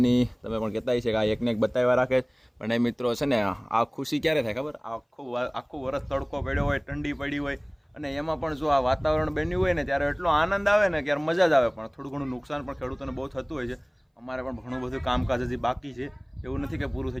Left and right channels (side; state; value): both; identical; correlation 1.00